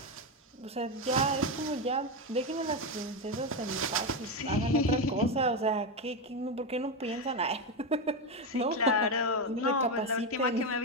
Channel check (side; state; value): both; normal; correlation 0.11